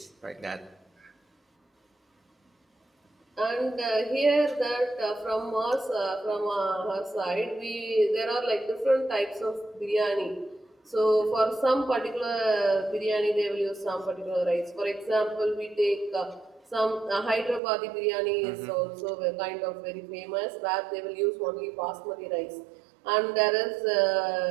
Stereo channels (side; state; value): left; drops out; at 17.6 s